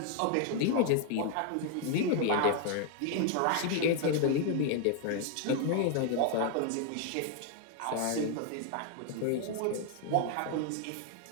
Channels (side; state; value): both; different; correlation 0.00